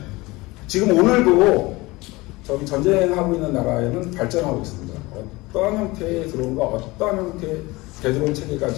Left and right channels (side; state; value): right; quieter; 21.9 dB